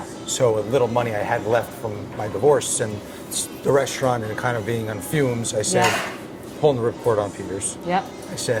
So with little money I had left from my divorce and the restaurant and kind of being on fumes, I said, Yeah. pulling the ripcord on Peter's. Yep. I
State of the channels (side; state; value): both; identical; correlation 1.00